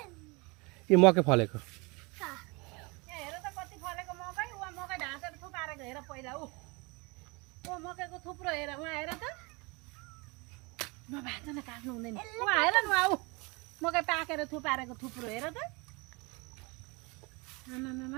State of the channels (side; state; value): left; quieter; 27.6 dB